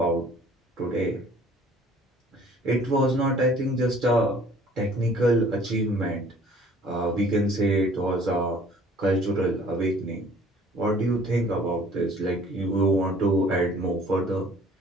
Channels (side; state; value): both; normal; correlation 0.53